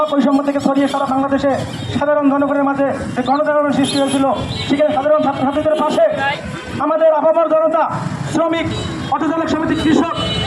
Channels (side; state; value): both; identical; correlation 1.00